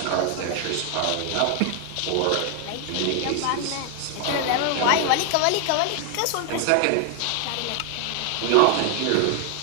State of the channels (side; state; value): both; different; correlation 0.00